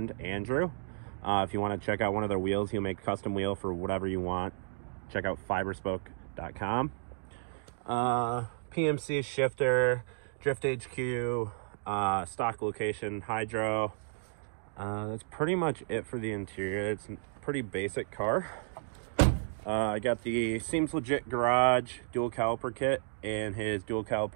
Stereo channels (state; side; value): silent; left; digital silence